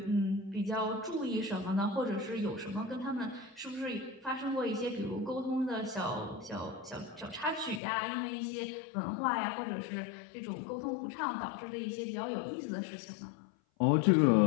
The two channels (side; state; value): right; drops out; at 7.8 s